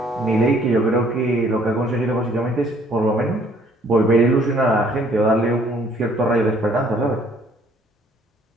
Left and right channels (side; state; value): both; normal; correlation 0.61